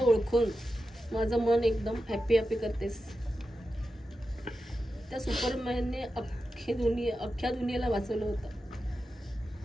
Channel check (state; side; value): normal; both; correlation 0.91